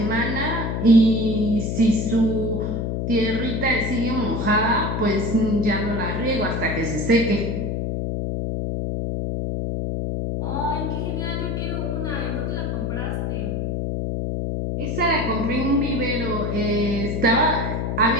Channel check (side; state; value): left; noise; hum, 1 dB below the sound